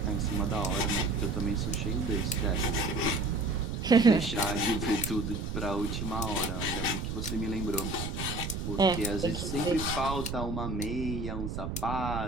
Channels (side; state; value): right; noise; rumble, 4 dB below the sound